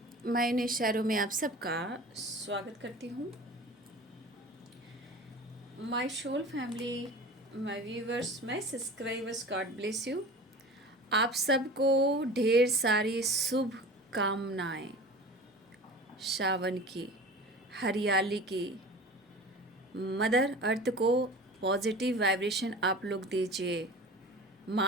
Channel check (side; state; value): both; normal; correlation 0.37